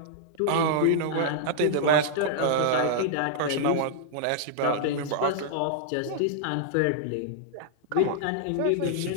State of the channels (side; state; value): both; different; correlation -0.01